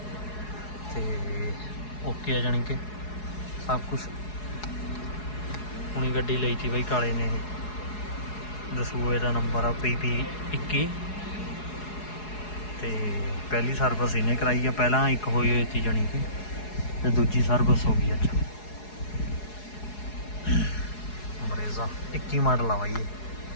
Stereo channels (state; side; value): late; right; 4.7 ms